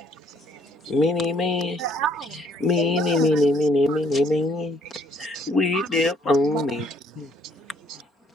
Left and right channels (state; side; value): normal; both; correlation 0.65